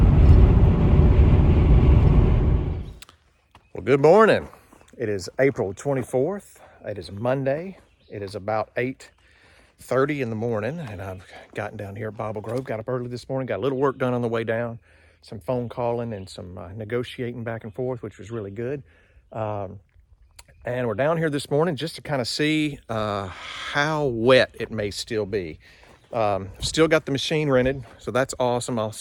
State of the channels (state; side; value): identical; both; correlation 1.00